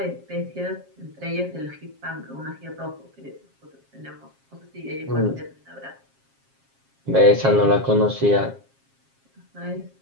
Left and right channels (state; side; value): late; left; 7.4 ms